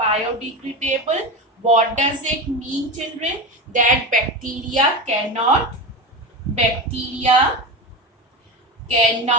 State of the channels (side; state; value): both; normal; correlation 0.22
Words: What does it mean, children? That bacteria cannot